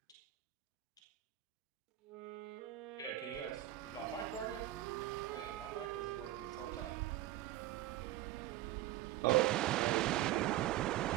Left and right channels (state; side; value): quieter; left; 14.5 dB